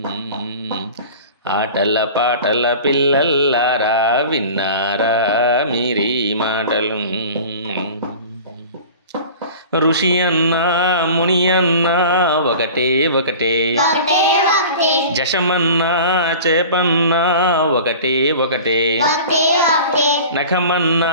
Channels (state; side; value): inverted; both; correlation -0.39